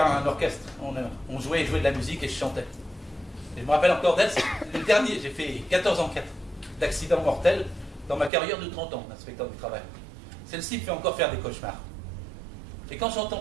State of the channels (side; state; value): left; drops out; at 8.3 s